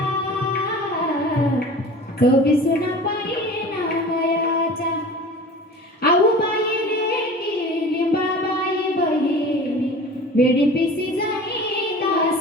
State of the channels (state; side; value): normal; both; correlation 0.39